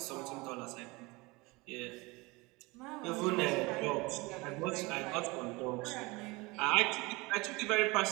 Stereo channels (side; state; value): left; quieter; 24.2 dB